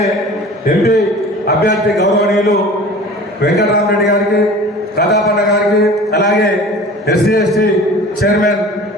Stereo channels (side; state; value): both; normal; correlation 0.41